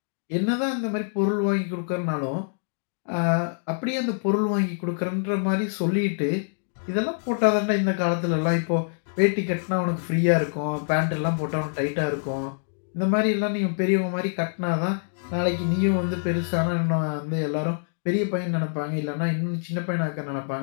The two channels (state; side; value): silent; right; digital silence